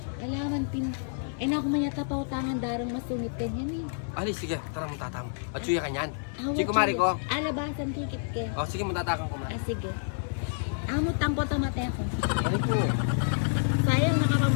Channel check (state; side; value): silent; right; 59 dB below the other